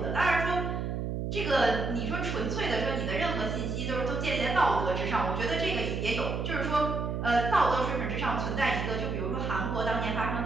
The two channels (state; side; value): noise; right; hum, 2 dB below the sound